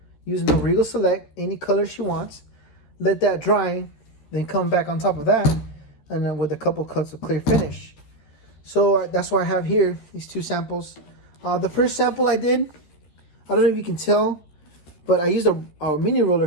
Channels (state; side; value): late; right; 13 ms